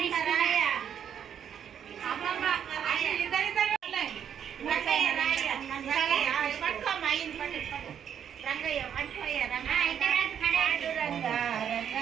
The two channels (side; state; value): left; quieter; 8.7 dB